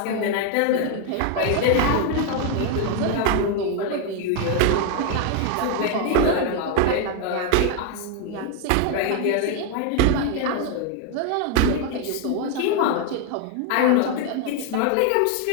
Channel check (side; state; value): both; different; correlation 0.01